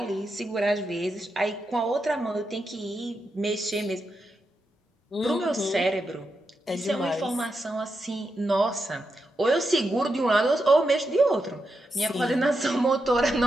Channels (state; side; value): normal; both; correlation 0.86